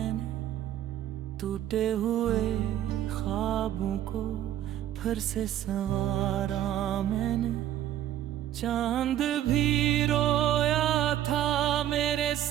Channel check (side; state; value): left; quieter; 11.9 dB